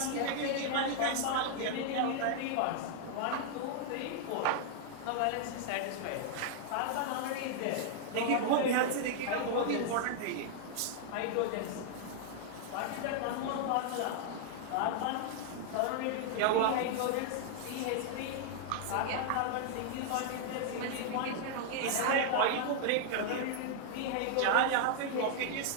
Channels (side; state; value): both; different; correlation 0.00